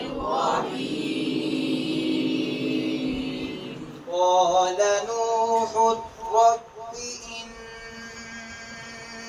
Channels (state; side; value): identical; both; correlation 1.00